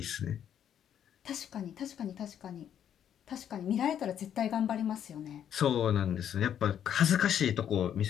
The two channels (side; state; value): right; quieter; 9.5 dB